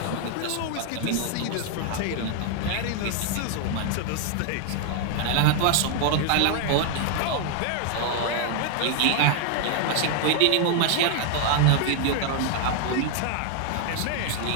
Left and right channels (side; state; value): both; different; correlation 0.00